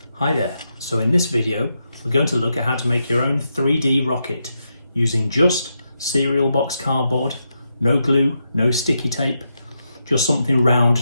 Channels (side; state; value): both; inverted; correlation -0.84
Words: Hi there, so in this video we're going to look at how to make your own 3D rocket using just cereal box cardboard, no glue, no sticky tape, just something round